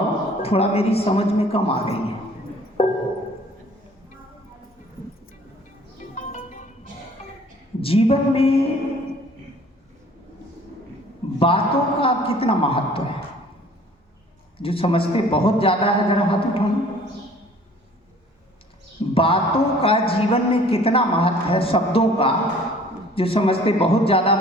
थोड़ा मेरी समझ में कम आ गई है। जीवन में बातों का कितना महत्व है? जो समझते बहुत ज्यादा है जरा हाथ उठाओ। बातों का जीवन में कितना महत्व है? शब्दों का जो समझते बहुत ज्यादा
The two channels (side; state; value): both; normal; correlation 0.52